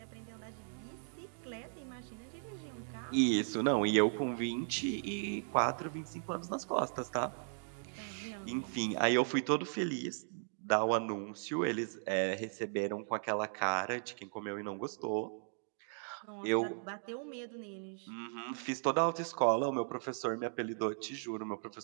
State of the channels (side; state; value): left; silent; digital silence